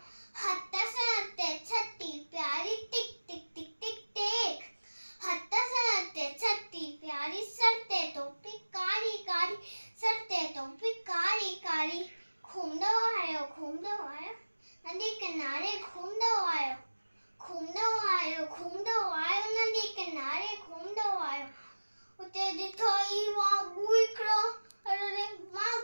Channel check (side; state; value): both; inverted; correlation -1.00